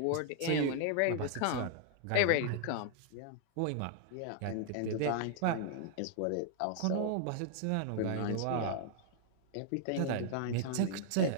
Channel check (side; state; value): both; different; correlation -0.01